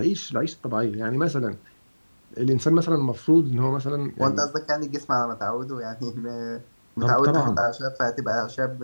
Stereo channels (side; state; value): both; inverted; correlation -1.00